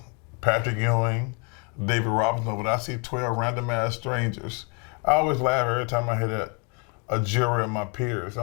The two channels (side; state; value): right; quieter; 34.9 dB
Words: Patrick Ewing, David Robinson, but I see 12 random ass strangers. I always laugh every time I hear that. a jury of my peers.